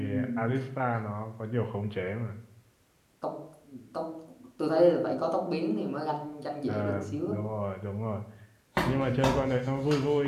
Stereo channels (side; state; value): both; identical; correlation 1.00